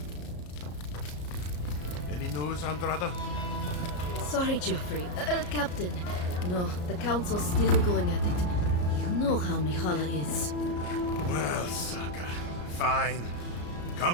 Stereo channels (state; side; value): late; right; 34 ms